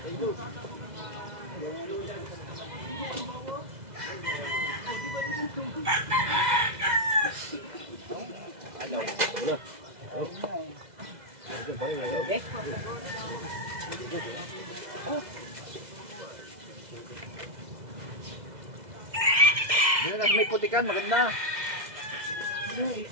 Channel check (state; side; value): late; left; 2.0 ms